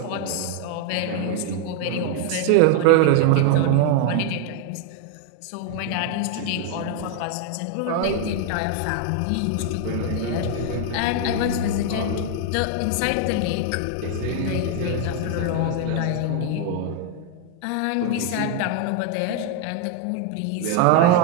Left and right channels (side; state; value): both; different; correlation 0.00